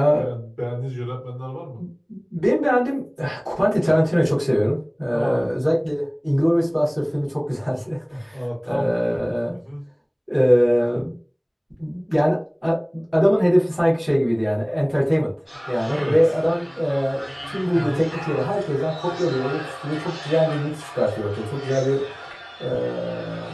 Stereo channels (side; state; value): both; identical; correlation 1.00